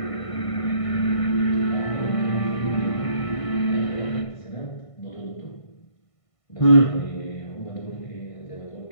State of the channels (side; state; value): right; late; 1.5 ms